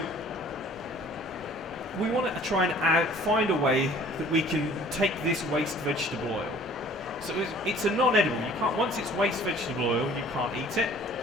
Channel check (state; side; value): normal; both; correlation 0.52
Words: we want to try and find a way that we can take this waste vegetable oil. So it's a non-edible. You can't, once it's waste vegetable oil, you can't eat it.